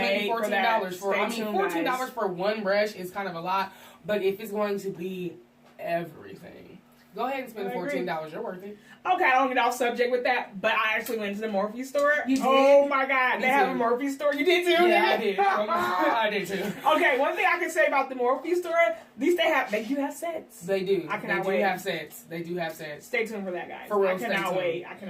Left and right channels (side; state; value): both; identical; correlation 1.00